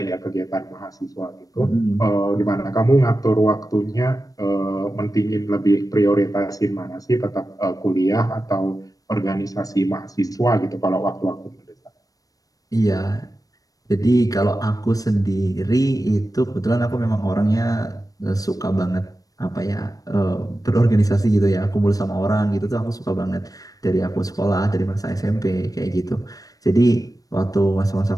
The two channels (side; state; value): right; late; 0.17 ms